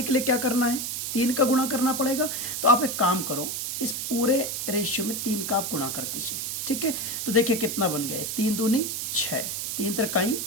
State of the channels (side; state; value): right; noise; hiss, 3 dB below the sound